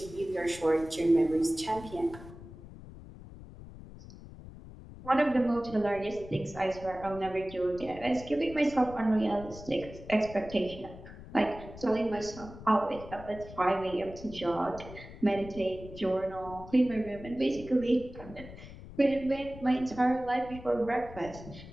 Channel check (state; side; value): noise; left; rumble, 15 dB below the sound